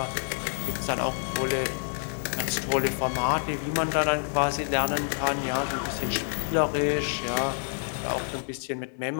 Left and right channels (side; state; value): right; silent; 56 dB below the other